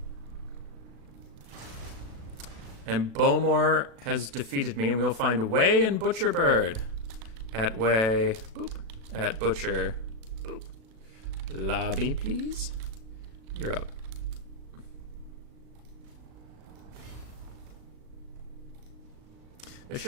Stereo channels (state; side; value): late; left; 36 ms